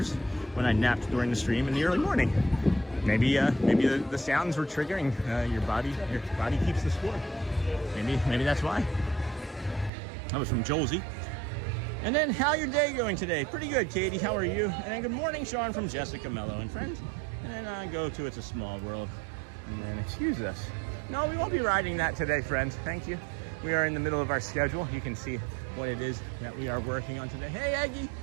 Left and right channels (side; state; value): left; drops out; at 9.9 s